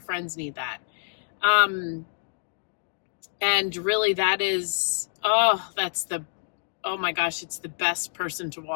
need that. And really that is, oh my gosh, it's the best person to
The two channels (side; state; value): right; silent; digital silence